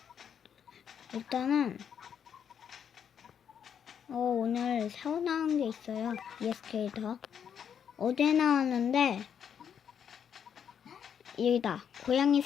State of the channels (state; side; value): quieter; right; 8.1 dB